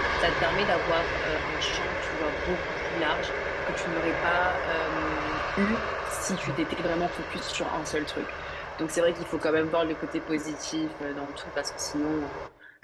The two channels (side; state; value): both; identical; correlation 1.00